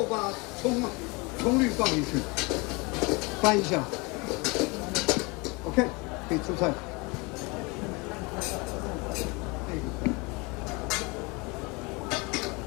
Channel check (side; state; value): right; quieter; 27.2 dB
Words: 把葱绿放进去，翻一下。OK， 可以出菜。